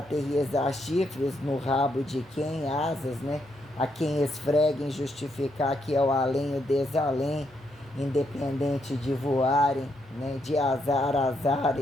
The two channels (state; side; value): normal; both; correlation 0.77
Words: chifres no rabo de quem, asas, né? A quem esfreguem, justificar que é o além, o desalém, independente de voarem, né? De azares,